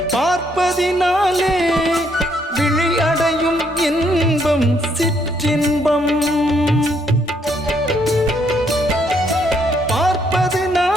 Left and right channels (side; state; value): both; normal; correlation 0.71